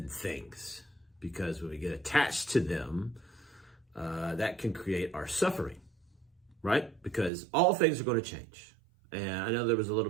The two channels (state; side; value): drops out; left; at 7.3 s